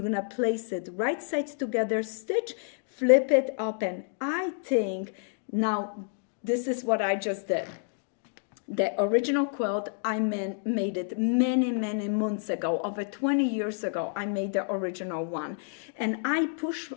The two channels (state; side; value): silent; right; digital silence